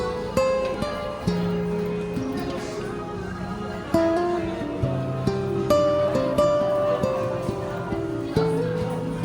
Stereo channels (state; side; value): identical; both; correlation 1.00